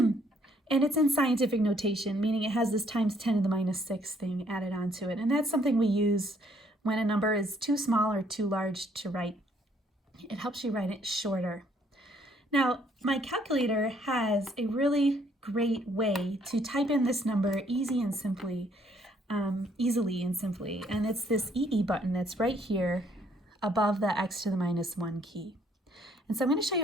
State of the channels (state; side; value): normal; both; correlation 0.66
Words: it's in scientific notation, meaning it has this times 10 to the minus 6 thing added onto it. And that's something we use when a number is too small or too large to write. It helps you write it shorter. Now, my calculator has a really great way to type in this number easily and simply, and it's this EE button that's right here above the x to the minus 1 key. And so I'm going to show